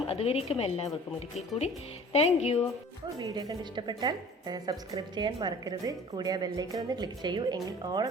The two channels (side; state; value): both; normal; correlation 0.46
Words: അതുവരേക്കും എല്ലാവർക്കും ഒരിക്കൽ കൂടി താങ്ക് യു. അപ്പോൾ വീഡിയോ കണ്ട് ഇഷ്ടപ്പെട്ടാൽ സബ്സ്ക്രൈബ് ചെയ്യാൻ മറക്കരുത്. കൂടി ആ ബെല്ലൈക്കൺ ഒന്ന് ക്ലിക്ക് ചെയ്യൂ, എങ്കിൽ ഓൾ